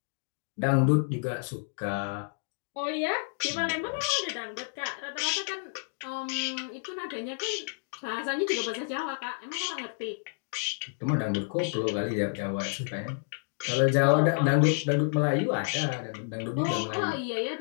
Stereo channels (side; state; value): right; silent; digital silence